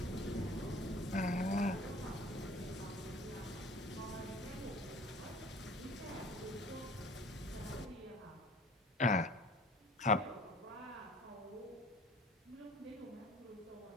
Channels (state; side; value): normal; both; correlation 0.47